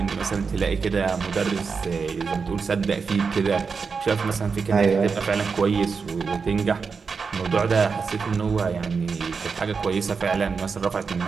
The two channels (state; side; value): quieter; left; 5.2 dB